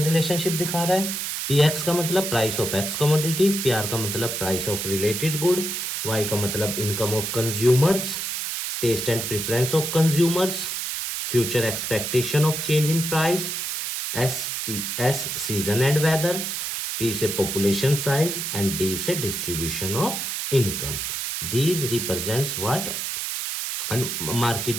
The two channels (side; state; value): right; noise; hiss, 3 dB below the sound